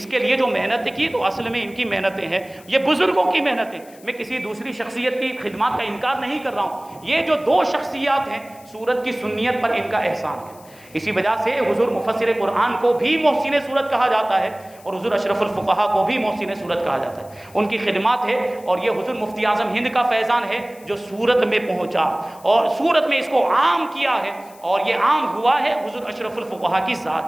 کے لیے جو محنت کی تو اصل میں ان کی محنتیں ہیں، یہ بزرگوں کی محنتیں۔ میں کسی دوسری شخصیت کی خدمات کا انکار نہیں کر رہا ہوں، یہ جو دو شخصیات ہیں، سورت کی سنیت پر ان کا احسان ہے، اسی وجہ سے حضور مفسر قرآن کو بھی محسن صورت کہا جاتا ہے اور حضور اشرف الفقہا کو بھی محسن صورت کہا جاتا ہے. ان کی خدمات ہے اور یہ حضور مفتی اعظم ہند کا فیضان ہے جو سورت میں پہنچا اور سورت میں اس کو عام کیا ہے، اور یہ عام ہوا ہے حضور اشرف الفقہا کی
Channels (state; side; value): noise; left; hiss, 24 dB below the sound